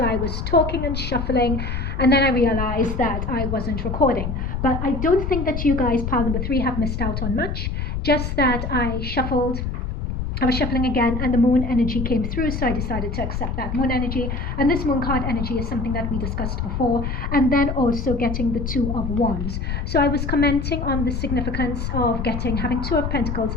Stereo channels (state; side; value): noise; left; rumble, 3 dB below the sound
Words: I was talking and shuffling, and then I realized that I wasn't recording. But I don't think that you guys, pile number 3, have missed out on much, just that I was shuffling again, and the moon energy came through, so I decided to accept that moon energy. And this moon card energy is something that we discussed before, and then also getting the 2 of Wands. So I was commenting on the significance of having 2 of Pentacles,